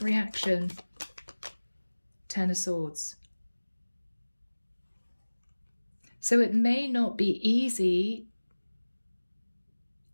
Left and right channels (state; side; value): inverted; both; correlation -1.00